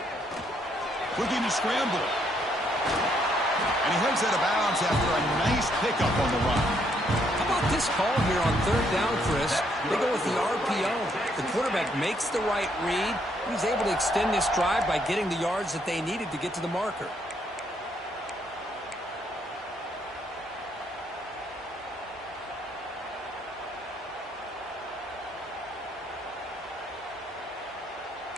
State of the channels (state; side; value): normal; both; correlation 0.71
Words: Looking to scramble. And he heads out of bounds after a nice pickup on the run. How about this call here on 3rd down, Chris? They go with the RPO. The quarterback makes the right read. He was able to extend this drive by getting the yards that they needed to get to the marker.